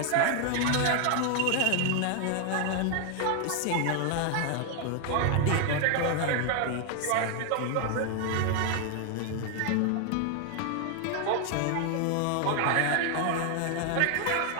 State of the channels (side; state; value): both; different; correlation 0.00